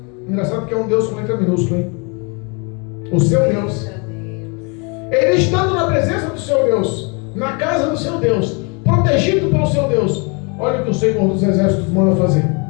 engraçado que é um Deus com letra minúscula, hein? O seu Deus, ele estando na presença do seu Deus, na casa do seu Deus, protegido pelo seu Deus, Olha o que o Senhor dos Exércitos manda fazer.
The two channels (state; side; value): quieter; right; 32.6 dB